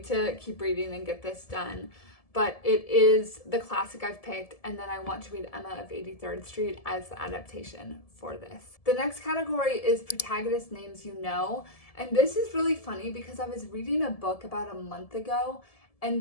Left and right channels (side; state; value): right; late; 1.7 ms